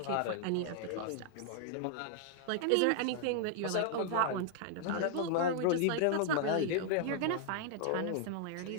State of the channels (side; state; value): both; different; correlation 0.00